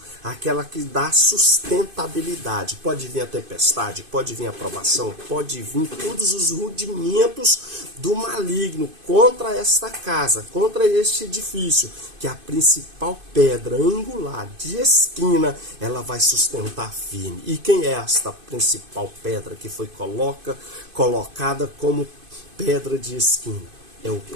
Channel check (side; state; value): left; late; 2.5 ms